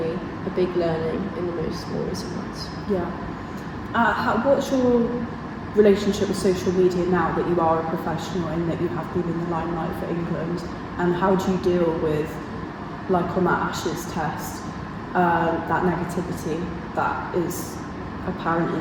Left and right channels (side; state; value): both; identical; correlation 1.00